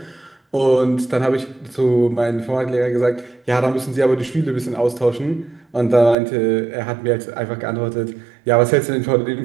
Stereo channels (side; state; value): left; drops out; at 6.2 s